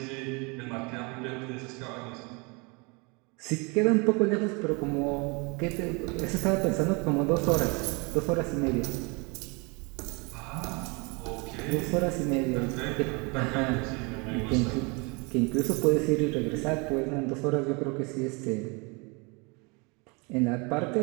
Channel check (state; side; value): quieter; left; 30.0 dB